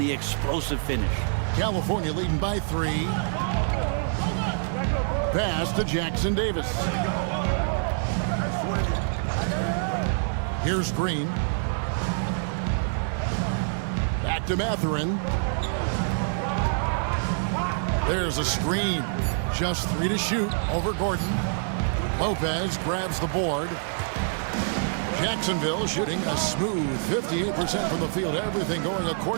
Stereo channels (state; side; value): silent; left; 60 dB below the other